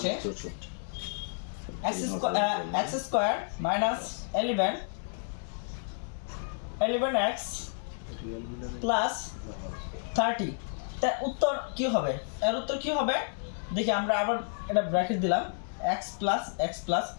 x² - 11x প্লাস 30, তার উত্তর কি হবে? এর উত্তর কি হবে দেখি। আমরা আবার এটা ব্র্যাকেট দিলাম x প্লাস,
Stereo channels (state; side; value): silent; right; digital silence